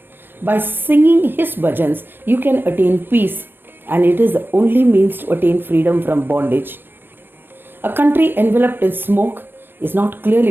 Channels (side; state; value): left; late; 0.099 ms